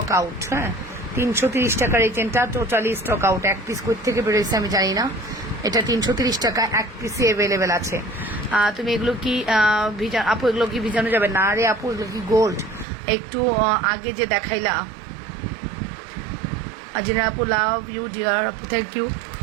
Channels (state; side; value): drops out; left; at 12.9 s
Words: আউট। হ্যাঁ, 330 টাকার এই চেনটা টোটালি স্টক আউট। এক পিস কোথা থেকে বেরোয়েছে আমি জানি না। এটা 330 টাকা, এক পিসে অ্যাভেলেবেল আছে। তুমি এগুলো কি আপু, এগুলো কি ভিজানো যাবে? না রে আপু, এগুলো কি গোল্ড? একটু আগে যে দেখাইলা। আজিনা আপু, লাভ ইউ ডিয়ার আপু, থ্যাংক ইউ।